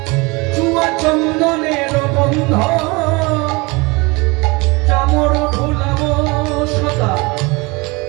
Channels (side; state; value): left; quieter; 25.9 dB